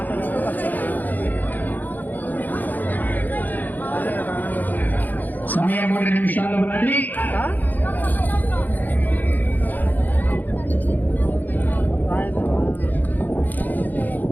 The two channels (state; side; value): late; right; 0.084 ms